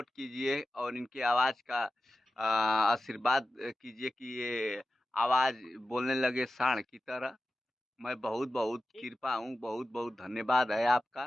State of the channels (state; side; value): normal; both; correlation 0.93